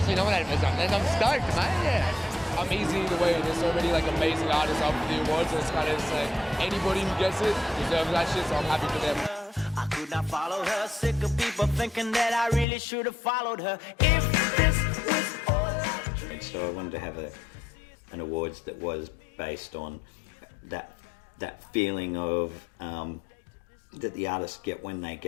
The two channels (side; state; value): right; drops out; at 12.7 s